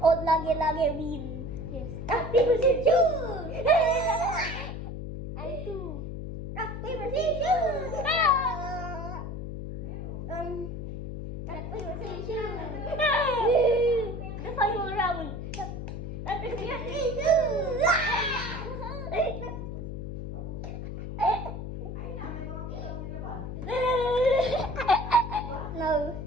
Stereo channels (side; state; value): left; noise; hum, 6 dB below the sound